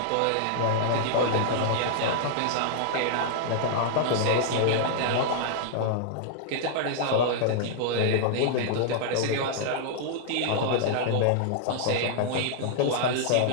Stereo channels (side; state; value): both; different; correlation -0.01